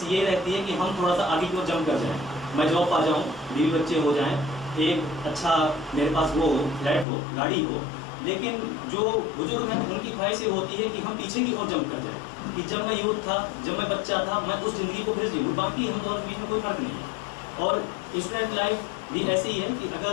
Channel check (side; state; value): right; drops out; at 7.1 s